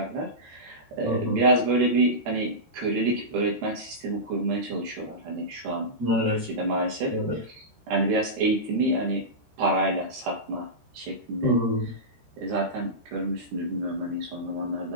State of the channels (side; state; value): left; late; 13 ms